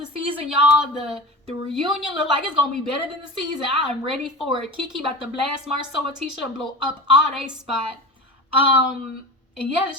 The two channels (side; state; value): both; normal; correlation 0.32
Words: season, y'all. The reunion look like it's gonna be better than the season. I am ready for it. Kiki about to blast Marsau and Tatisha and blow up all they spot. And yeah,